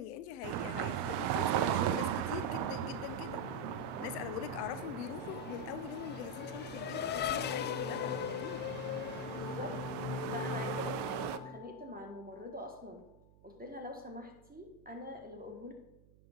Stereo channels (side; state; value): right; noise; hum, 26 dB below the sound